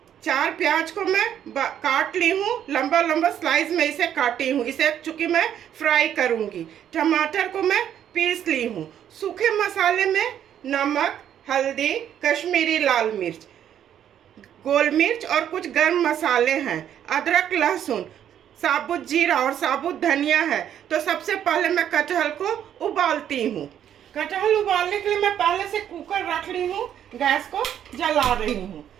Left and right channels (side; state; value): left; quieter; 10.0 dB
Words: 4 प्याज को मैं काट ली हूँ, लंबा लंबा स्लाइस में इसे काटी हूँ। इसे चूंकि मैं फ्राई करूँगी। टमाटर को मैं पीस ली हूँ। सूखे मसाले में नमक, हल्दी, कश्मीरी लाल मिर्च, गोल मिर्च और कुछ गर्म मसाले हैं। अदरक, लहसुन, साबुत जीरा और साबुत धनिया है। तो सबसे पहले मैं कटहल को उबालती हूँ। कटहल उबालने के लिए मैं पहले से कुकर रख ली हूँ। गैस को जला रही हूँ।